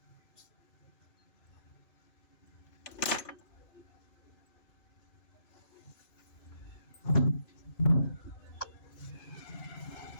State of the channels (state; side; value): late; right; 3.4 ms